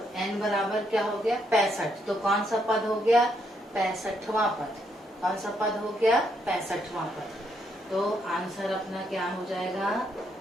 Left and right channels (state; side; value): normal; both; correlation 0.75